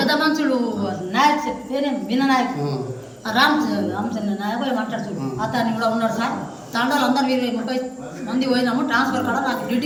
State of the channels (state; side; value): identical; both; correlation 1.00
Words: మనుషులు నాయక్ పేరే విననాయక్ రామచంద్ర నాయక్ మాట్లాడుతాడు. అతన్ని కూడా ఉన్నాడు సార్. తండాలు అందరూ 20-30 మంది పోయినాము. ట్రాన్స్ఫర్ కూడా నాకు డ్యూటీ